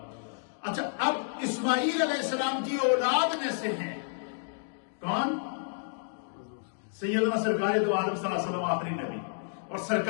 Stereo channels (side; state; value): right; silent; digital silence